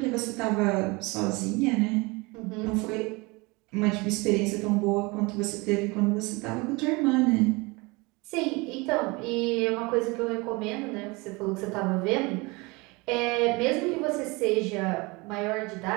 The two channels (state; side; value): quieter; left; 25.7 dB